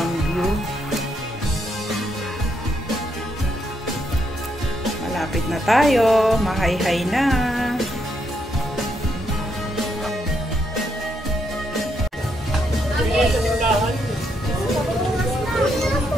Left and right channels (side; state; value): both; normal; correlation 0.77